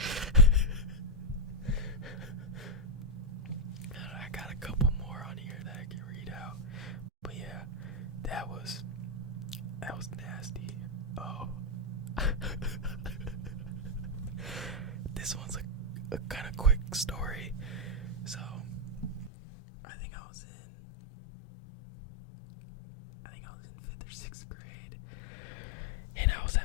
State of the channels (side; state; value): right; drops out; at 19.3 s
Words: I got a couple more on here that I can read out. But yeah, that was nasty. Oh. This one's a kind of quick story. So, I think I was in 5th or 6th grade, and I was